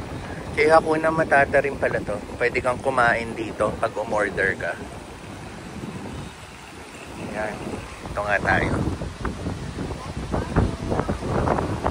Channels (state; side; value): identical; both; correlation 1.00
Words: Kaya Hakuna Matata rin pala to. Pwede kang kumain dito pag umorder ka. Yan. Ito nga tayo.